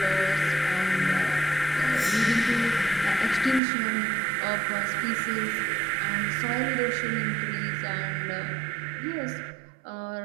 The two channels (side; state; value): left; drops out; at 3.6 s